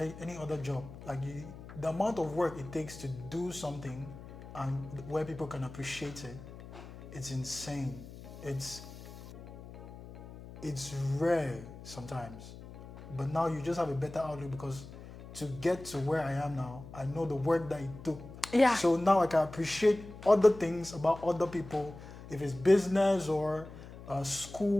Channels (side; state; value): left; noise; hum, 15 dB below the sound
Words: any other job. The amount of work it takes to do something and where people can appreciate it, it's insane. It's rare sometimes. But now you just have a better outlook, because to get to where I am now, I know the work that it took. Yeah. So now I can appreciate other things about other people. If it's business or